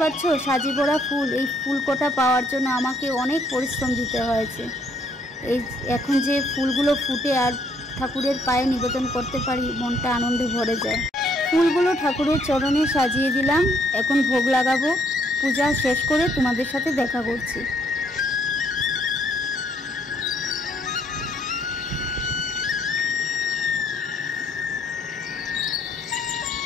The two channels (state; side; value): normal; both; correlation 0.68